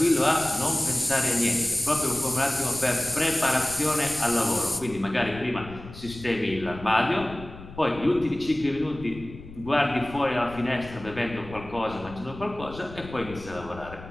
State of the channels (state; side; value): noise; left; rumble, 15 dB below the sound